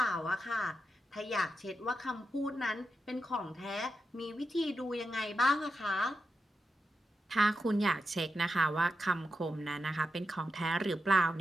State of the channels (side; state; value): both; normal; correlation 0.87